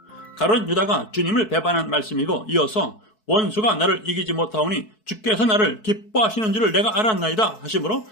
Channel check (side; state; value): right; late; 4.6 ms